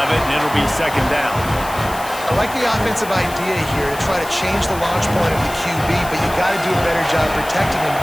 it, and it'll be 2nd down. I like the offensive idea here to try to change the launch point of the QB, but you got to do a better job protecting him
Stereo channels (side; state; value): left; noise; hiss, 14 dB below the sound